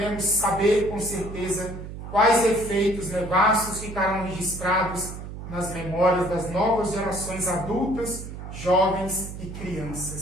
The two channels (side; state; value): right; noise; hum, 10 dB below the sound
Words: saber com certeza quais efeitos nefastos ficarão registrados nas memórias das novas gerações adultas, jovens e